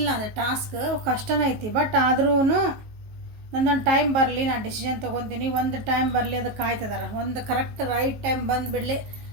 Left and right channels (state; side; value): late; left; 18 ms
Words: ಅದು ಟಾಸ್ಕ್ ಕಷ್ಟನೇ ಐತಿ. ಬಟ್ ಆದ್ರೂ ನಂದೊಂದು ಟೈಮ್ ಬರಲಿ, ನಾನು ಡಿಸಿಷನ್ ತೊಗೊತೀನಿ, ಒಂದು ಟೈಮ್ ಬರಲಿ, ಅದಕ್ಕೆ ಕಾಯ್ತಿದ್ದಾರೆ. ಒಂದು ಕರೆಕ್ಟ್ ರೈಟ್ ಟೈಮ್ ಬಂದುಬಿಡಲಿ,